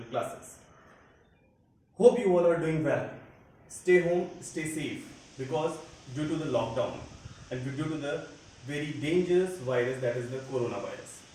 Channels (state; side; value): identical; both; correlation 1.00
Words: Classes. Hope you all are doing well. Stay home, stay safe because due to the lockdown and due to the very dangerous virus that is the coronavirus.